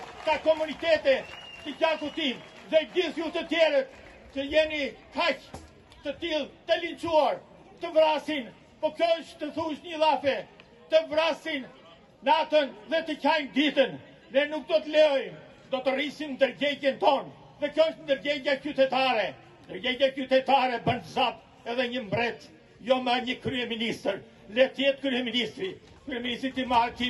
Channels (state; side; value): identical; both; correlation 1.00